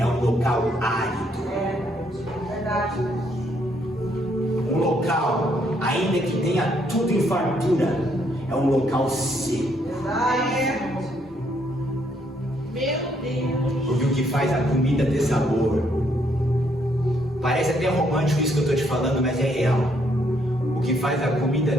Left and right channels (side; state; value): both; normal; correlation 0.71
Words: um local árido. Um local, ainda que tenha tudo em fartura, é um local seco. Meu Deus. Porque o que faz a comida ter sabor, parece até romântico isso que eu estou te falando, mas é real. O que faz a comida